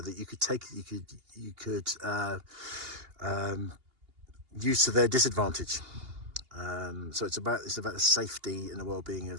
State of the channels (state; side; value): late; left; 2.8 ms